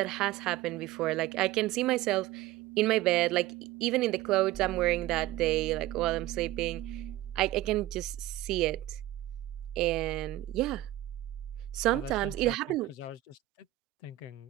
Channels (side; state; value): left; quieter; 15.8 dB